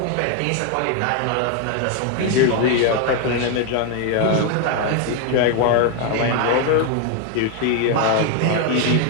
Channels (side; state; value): both; different; correlation 0.01